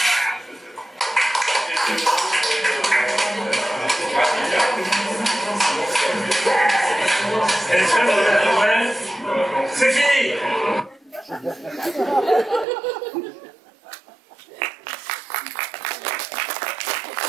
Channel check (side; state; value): left; drops out; at 12.7 s